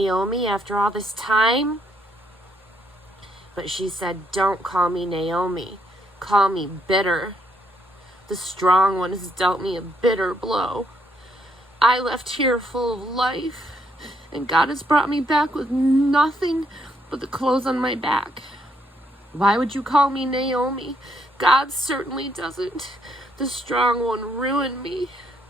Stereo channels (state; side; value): normal; both; correlation 0.72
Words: after all this time?" But she said, "Don't call me Naomi. Call me bitter. The strong one has dealt me a bitter blow. I left here full of life, and God has brought me back with nothing but the clothes on my back. Why would you call me Naomi? God certainly doesn't. The strong one ruined me."